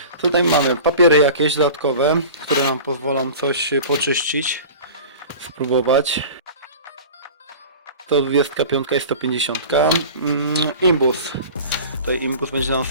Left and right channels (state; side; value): inverted; both; correlation -0.38